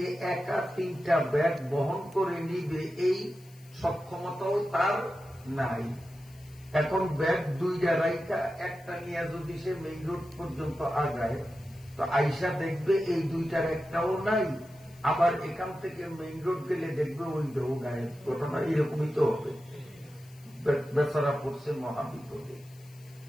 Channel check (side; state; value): left; noise; hiss, 27 dB below the sound